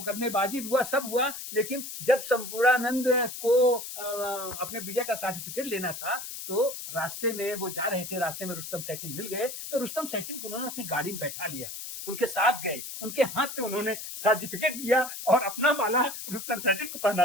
हुआ, सब हुआ। लेकिन जब संपूर्णानंद को अपने विजय का सर्टिफिकेट लेना था तो रास्ते में वो जा रहे थे, रास्ते में रुस्तम सैटिन मिल गए, तो रुस्तम सैटिन को उन्होंने अपनी गाड़ी में बैठा लिया, उनके साथ गए, उनके हाथ से उन्होंने सर्टिफिकेट लिया और अपना माला रुस्तम सैटिन को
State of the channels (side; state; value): left; noise; hiss, 8 dB below the sound